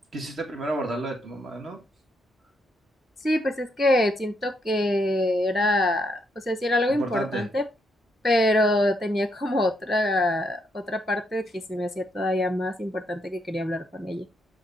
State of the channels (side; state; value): both; normal; correlation 0.77